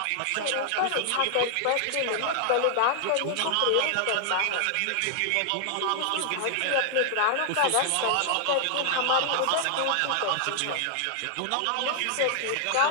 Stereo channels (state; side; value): different; both; correlation -0.01